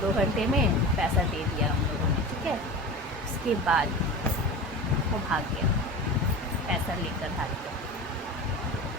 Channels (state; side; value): normal; both; correlation 0.30